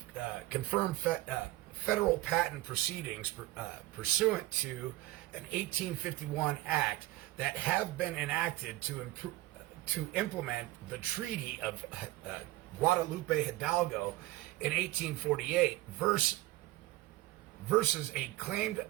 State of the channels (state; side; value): quieter; left; 18.1 dB